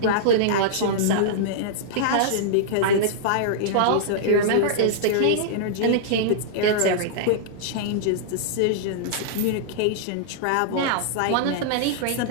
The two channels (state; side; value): different; both; correlation -0.02